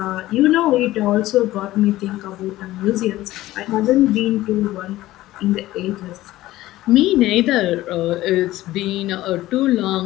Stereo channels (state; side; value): quieter; right; 16.2 dB